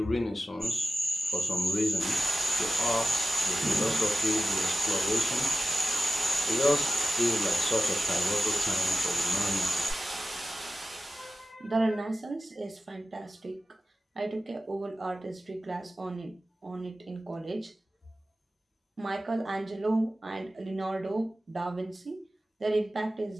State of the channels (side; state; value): both; normal; correlation 0.94